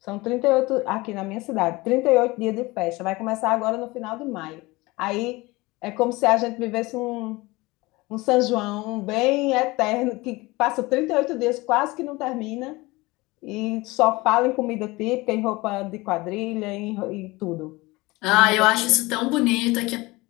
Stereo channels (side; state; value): right; quieter; 22.0 dB